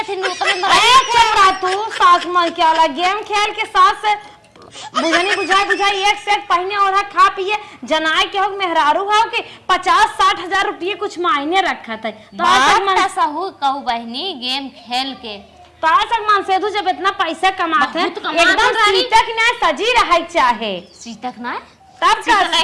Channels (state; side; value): identical; both; correlation 1.00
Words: थी तू सास मन क्या वाला गेम खेल के सास से बुझनी बुझाई एक सेट पहने और खा पिए जनाए के हो मेहरारू हो के 50-60 हजार रुपये कुछ मायने रखत है तो सहू कहू बहनी गेम खेल के तो आज मन से जब इतना पैसा कमाते हैं एकदम सीतक ना सजी रहा चाहे सीतक ना तब